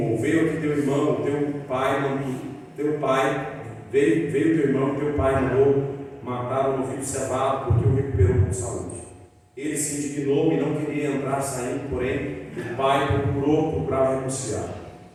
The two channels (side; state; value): both; identical; correlation 1.00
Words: veio aqui teu irmão, teu pai mandou matar o novilho cevado, porque o recuperou com saúde. Ele se indignou e não queria entrar saindo, porém o pai procurava renunciar.